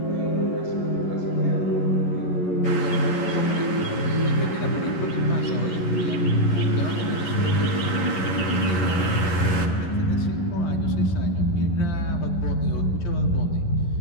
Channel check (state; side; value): late; right; 11 ms